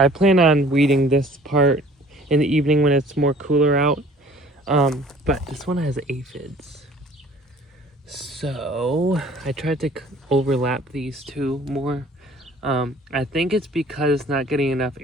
plan on weeding this part in the evening when it's more cooler out. But this one has aphids. So I tried to overlap these two more. I think it's because it's not getting enough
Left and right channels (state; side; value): normal; both; correlation 0.52